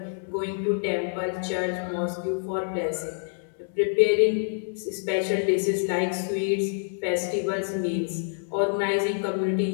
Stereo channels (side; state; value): right; silent; digital silence